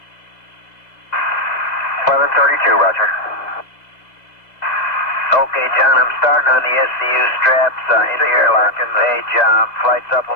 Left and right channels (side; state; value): right; late; 2.0 ms